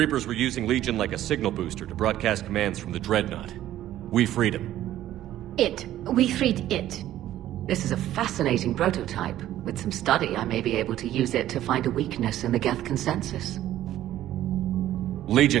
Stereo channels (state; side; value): quieter; left; 13.1 dB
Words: were using Legion like a signal booster to broadcast commands from the Dreadnought. We freed him. We freed it. This is a fascinating prototype. With some study, I may be able to use it to find a weakness in the Geth consensus.